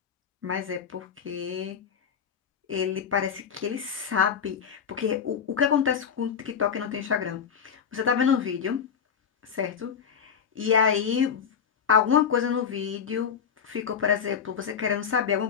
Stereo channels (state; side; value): quieter; right; 7.2 dB